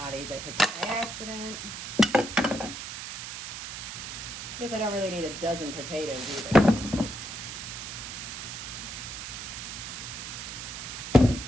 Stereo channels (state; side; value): noise; right; hiss, 8 dB below the sound